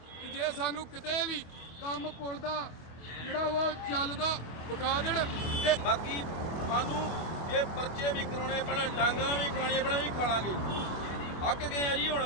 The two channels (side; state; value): right; late; 25 ms